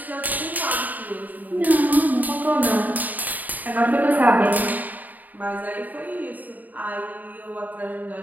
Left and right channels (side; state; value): left; late; 0.082 ms